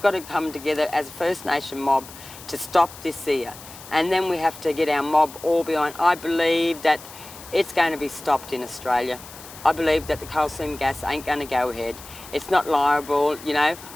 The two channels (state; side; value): noise; left; hiss, 17 dB below the sound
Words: got to come together as a First Nation mob to stop this here. And then we have to get our mob all behind. I believe that it's going to be stopped in Australia. I believe that the coal seam gas ain't going to go ahead. It's not liable, you know.